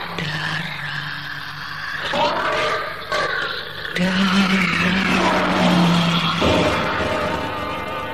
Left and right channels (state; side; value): identical; both; correlation 1.00